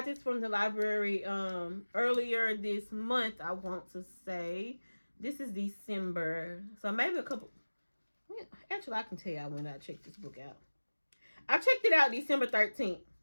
this from the library earlier this month, I want to say. This is December. So maybe a couple. Actually, I can tell you when I checked this book out. I checked it out December 13th.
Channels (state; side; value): inverted; both; correlation -1.00